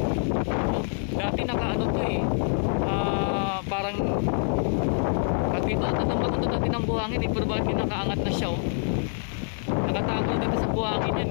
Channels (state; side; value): silent; right; 58 dB below the other